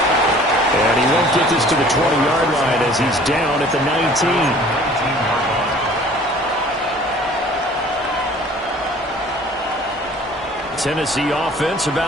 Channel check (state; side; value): normal; both; correlation 0.50